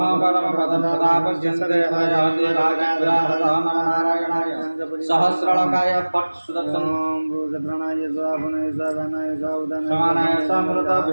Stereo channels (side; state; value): both; inverted; correlation -1.00